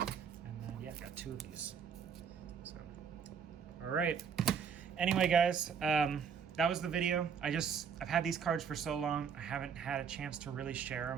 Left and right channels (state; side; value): quieter; left; 6.9 dB